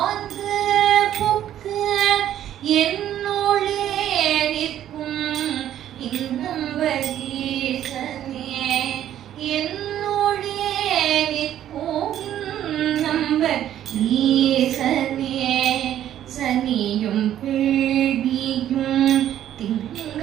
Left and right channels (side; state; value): left; quieter; 11.4 dB